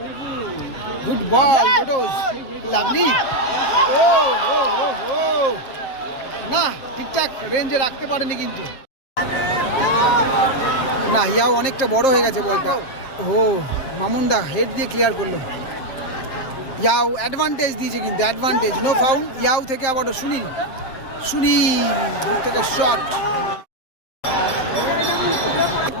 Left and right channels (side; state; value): right; late; 7.5 ms